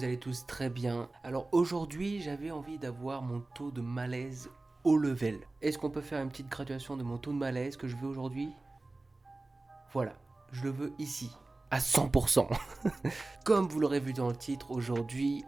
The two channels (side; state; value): left; quieter; 3.1 dB